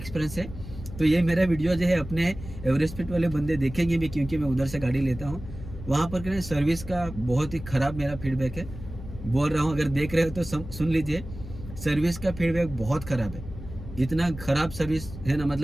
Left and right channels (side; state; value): left; noise; hum, 12 dB below the sound